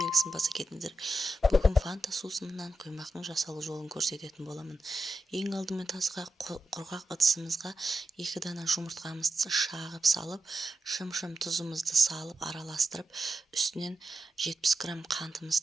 баса кетіңіздер. Бүгін фанта сусынынан құймақтың жасалу жолын көрсететін боламын. Ең алдымен тазға құрғақ ыдысымызға 2 дана жұмыртқамызды шағып салып, шым-шым тұзымызды салып араластырып, үстінен 70 грамм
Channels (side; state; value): both; normal; correlation 0.89